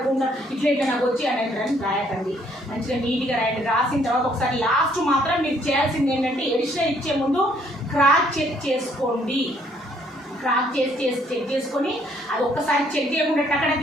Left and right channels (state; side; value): normal; both; correlation 0.66